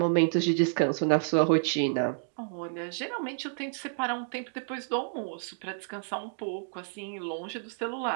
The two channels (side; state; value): left; silent; digital silence